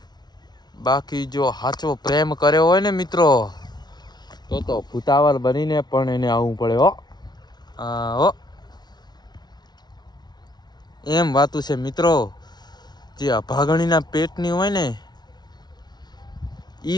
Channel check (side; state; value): right; late; 0.20 ms